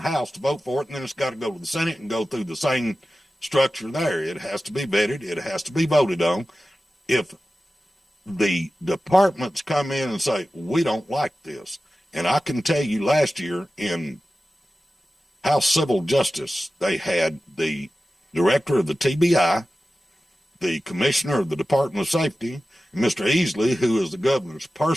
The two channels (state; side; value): normal; both; correlation 0.94